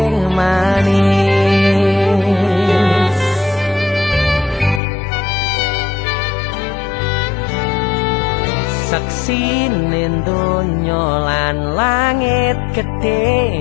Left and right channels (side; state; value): right; drops out; at 4.8 s